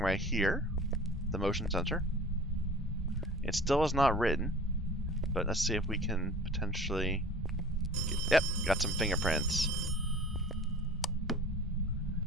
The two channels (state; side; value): normal; both; correlation 0.42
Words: here, the motion sensor. It still is not written, but let's see if we can potentially... Yep, got some fingerprints.